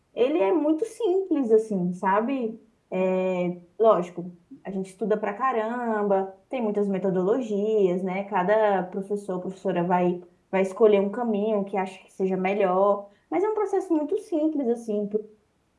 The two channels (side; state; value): both; identical; correlation 1.00